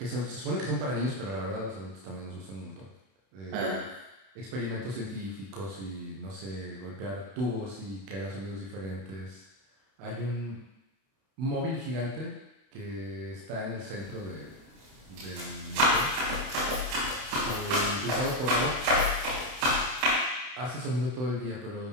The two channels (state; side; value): late; left; 31 ms